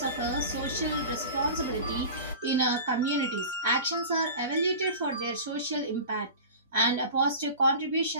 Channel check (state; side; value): inverted; both; correlation -0.35